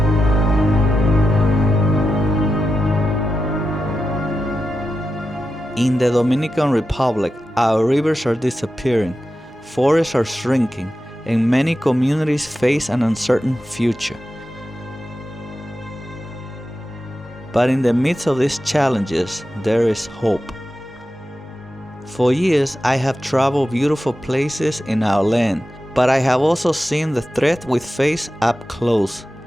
In the Dominican Republic, our rivers are disappearing, forests are shrinking, and many communities face an uncertain future. But in the midst of these challenges, there is hope. For years, I have traveled beautiful places in our land, but I have also seen the threat we face up close.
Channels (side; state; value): both; normal; correlation 0.91